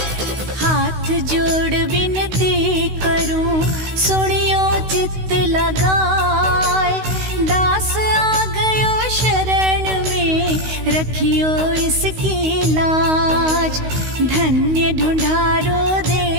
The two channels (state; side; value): late; left; 16 ms